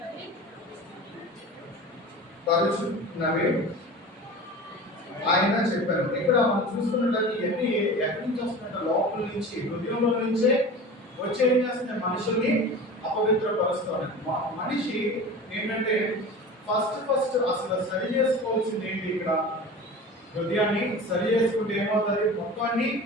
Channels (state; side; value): normal; both; correlation 0.35